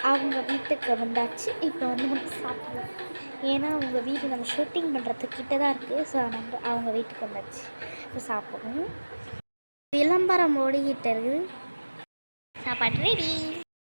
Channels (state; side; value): inverted; both; correlation -1.00